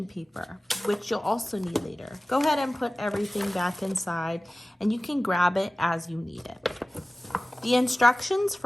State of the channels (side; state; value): both; normal; correlation 0.96